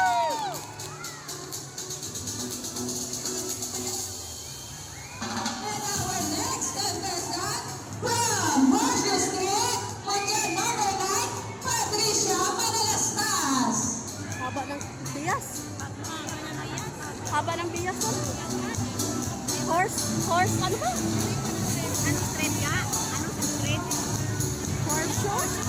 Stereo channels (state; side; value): identical; both; correlation 1.00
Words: Haba ng bias ko. Horse, ano ba? Anong street ka? Anong street? Horse show?